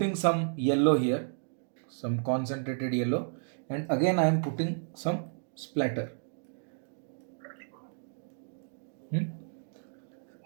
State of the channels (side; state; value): left; silent; digital silence